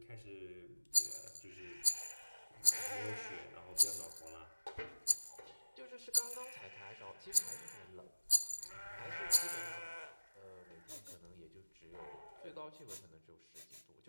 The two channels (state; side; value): inverted; both; correlation -1.00